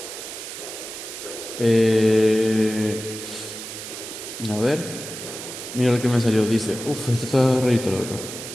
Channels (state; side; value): noise; right; hiss, 10 dB below the sound